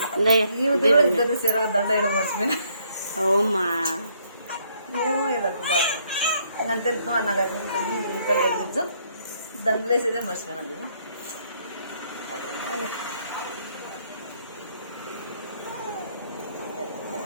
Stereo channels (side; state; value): both; inverted; correlation -0.69